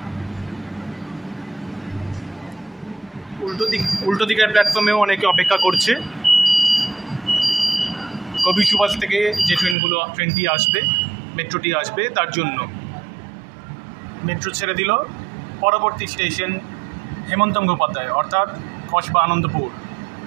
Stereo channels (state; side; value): drops out; left; at 9.8 s